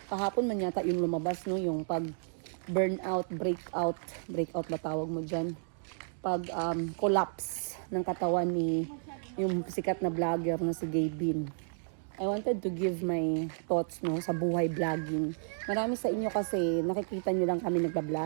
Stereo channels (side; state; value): left; silent; digital silence